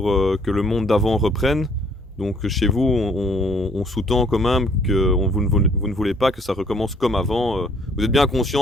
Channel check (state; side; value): normal; both; correlation 0.63